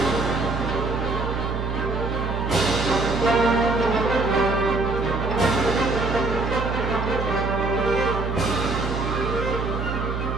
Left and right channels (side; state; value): right; noise; hum, 3 dB below the sound